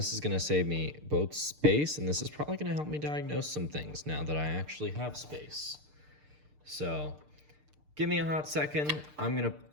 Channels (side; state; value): left; late; 6.7 ms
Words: is gonna save me both space, and this is probably gonna help me diagnose some things now that I actually have space. So give me a hot second. I'm gonna